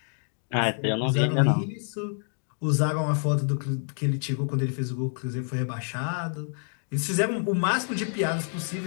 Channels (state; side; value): silent; right; 60 dB below the other